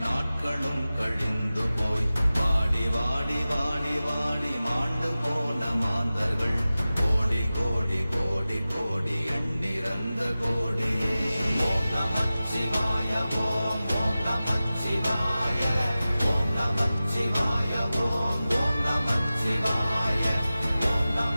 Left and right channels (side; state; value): both; inverted; correlation -0.96